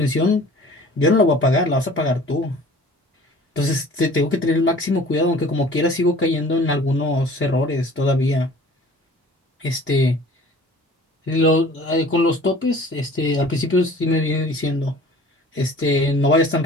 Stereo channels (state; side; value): normal; both; correlation 0.47